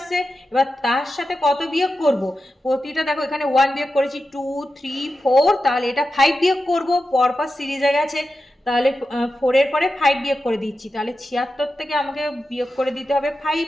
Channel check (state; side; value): normal; both; correlation 0.91